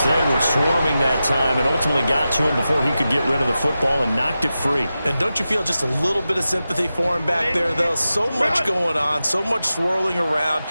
they were swarming that time and ultimately got to him before he could get rid of the football and knocked it free. And don't you feel just a little bit of sympathy for him back there, though? So much going on, so much swirling around.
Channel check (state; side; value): inverted; both; correlation -0.92